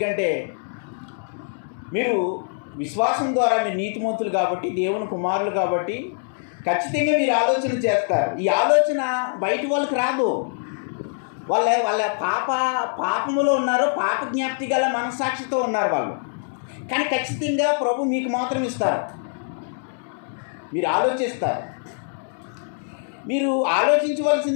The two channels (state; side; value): silent; right; digital silence